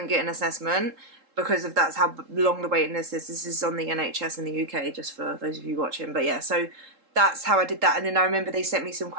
get an assessment, because of that's how long the waiting list is. This is on the NHS in the UK, just for those of you watching. But yeah, so that's how I did that. And then I remember they sent me some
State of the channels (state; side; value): late; left; 3.7 ms